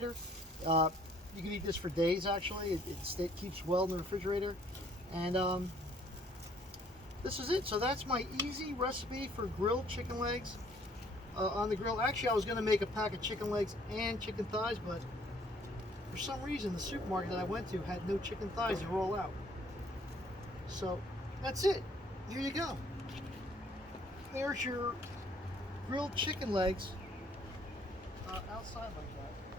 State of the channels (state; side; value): normal; both; correlation 0.62